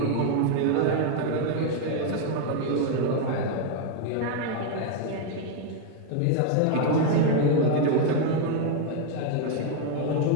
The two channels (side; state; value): both; different; correlation 0.01